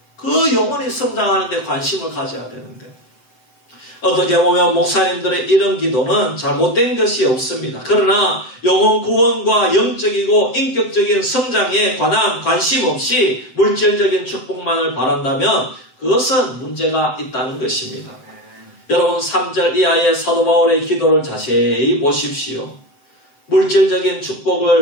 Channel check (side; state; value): right; late; 7.8 ms